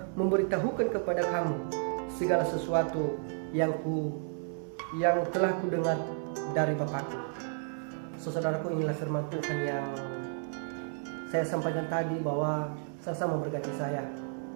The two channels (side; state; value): left; silent; 56 dB below the other